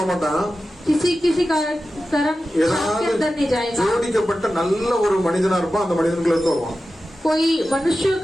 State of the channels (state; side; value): normal; both; correlation 0.93